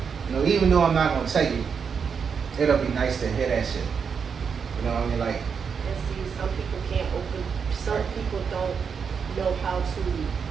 know, even though I'm not gonna tell you, it'll be nice to hear that shit. You know what I mean? Like, And see, some people don't know how to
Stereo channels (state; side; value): quieter; left; 6.3 dB